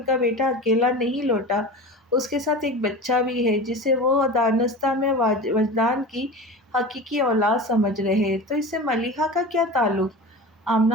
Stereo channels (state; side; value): normal; both; correlation 0.31